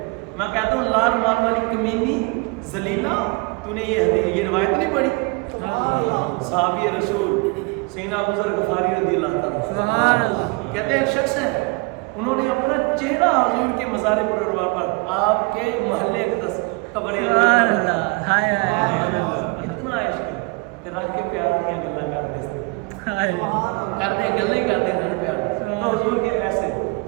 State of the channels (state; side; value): quieter; left; 28.3 dB